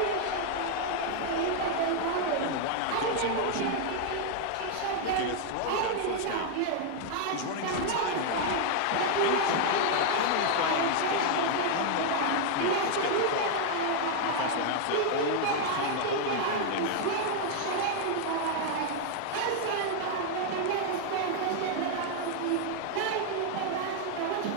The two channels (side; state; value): both; different; correlation 0.00